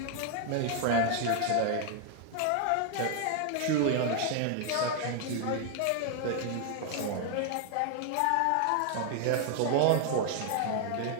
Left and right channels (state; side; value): different; both; correlation 0.00